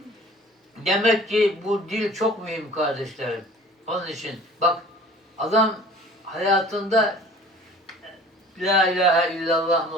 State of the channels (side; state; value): both; normal; correlation 0.47